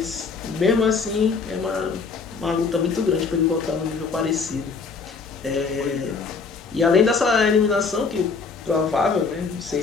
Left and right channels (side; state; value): right; quieter; 4.9 dB